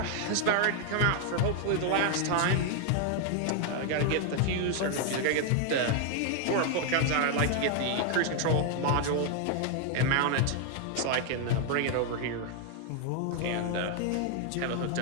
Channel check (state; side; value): different; both; correlation 0.00